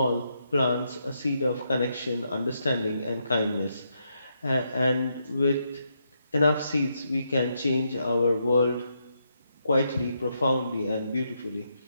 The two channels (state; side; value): inverted; both; correlation -0.80